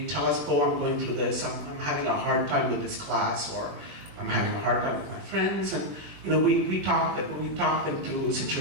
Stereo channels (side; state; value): left; late; 21 ms